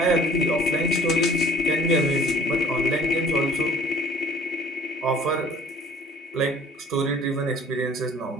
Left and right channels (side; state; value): both; normal; correlation 0.51